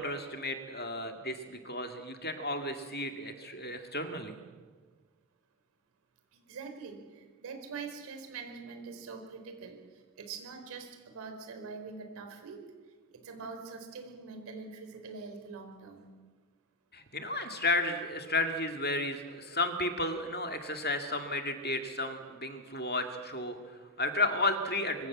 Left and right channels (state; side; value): normal; both; correlation -0.04